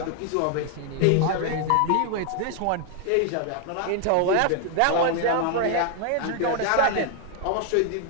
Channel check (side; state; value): both; different; correlation 0.00